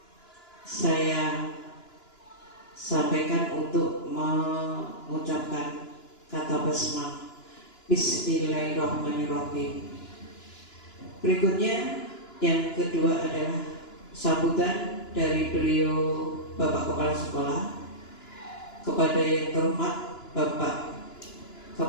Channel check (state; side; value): late; right; 2.9 ms